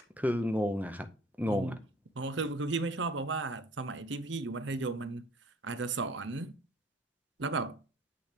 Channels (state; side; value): normal; both; correlation 0.52